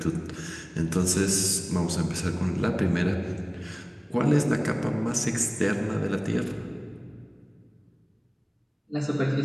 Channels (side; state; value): both; identical; correlation 1.00